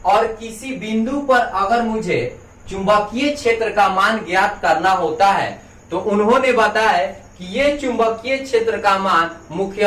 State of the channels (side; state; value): both; identical; correlation 1.00